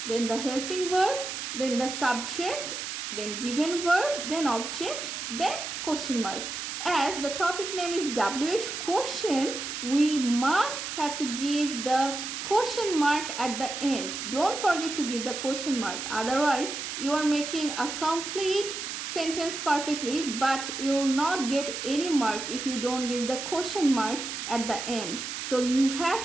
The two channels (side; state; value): right; noise; hiss, 6 dB below the sound